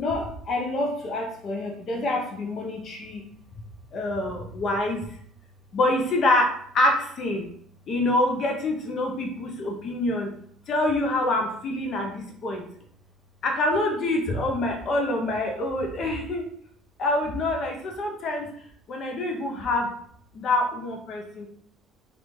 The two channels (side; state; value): both; normal; correlation 0.53